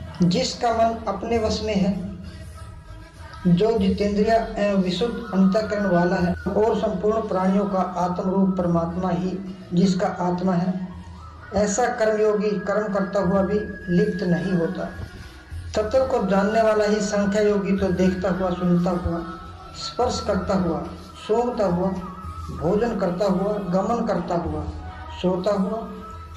जिसका मन अपने वश में है, जो जितेंद्रिय एवं विशुद्ध अंतःकरण वाला है, और संपूर्ण प्राणियों का आत्म रूप परमात्मा ही जिसका आत्मा है, ऐसा कर्मयोगी कर्म करता हुआ भी लिप्त नहीं होता। तत्व को जानने वाला ही संख्या योगी तो देखता हुआ, सुनता हुआ, स्पर्श करता हुआ, सूंघता हुआ, भोजन करता हुआ, गमन करता हुआ, सोता हुआ,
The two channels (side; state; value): both; identical; correlation 1.00